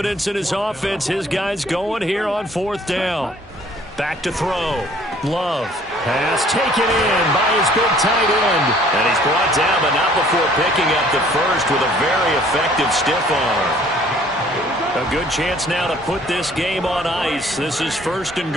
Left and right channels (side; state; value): both; normal; correlation 0.57